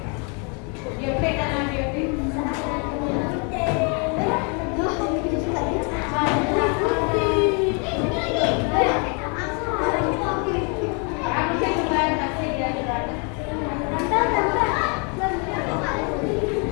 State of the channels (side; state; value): right; quieter; 35.8 dB